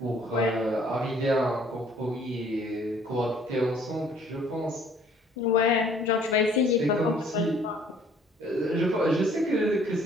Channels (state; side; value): normal; both; correlation 0.58